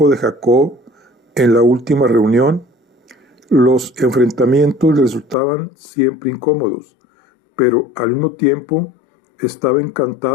de Jacob en la última reunión. Los enfrentamientos le resultaban siempre incómodos, pero al mismo tiempo estaba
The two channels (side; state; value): right; drops out; at 5.4 s